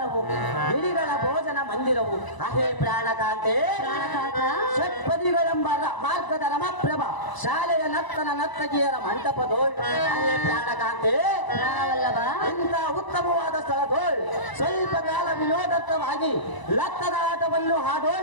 ಗಿಳಿಗಳ ಭೋಜನ ಮಂದಿರವು. ಅಹೇ ಪ್ರಾಣಕಾಂತೆ ಷಟ್ಪದಿಗಳೆಂಬ ಮಾರ್ಗದ ರಮಪ್ರಭ, ಶಾಲೆಯ ನರ್ತಗಿಯರ ಮಂಟಪದೋಳ್. ಅಹೇ ಪ್ರಾಣಕಾಂತೆ ಪ್ರಾಣವಲ್ಲಭ, ಇಂಥ ಉತ್ತಮವಾದ ಸ್ಥಳದೋಳ್ ಸ್ವಲ್ಪ ಕಾಲ ವಿನೋದತ್ವವಾಗಿ ಲತ್ತದ ಆಟವನ್ನು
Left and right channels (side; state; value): right; late; 1.0 ms